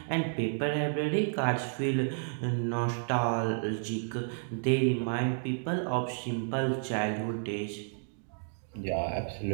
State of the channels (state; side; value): silent; left; digital silence